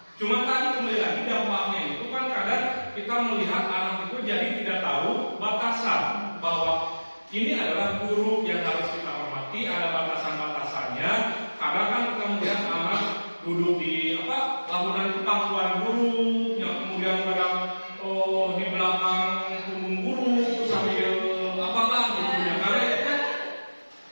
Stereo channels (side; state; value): both; inverted; correlation -1.00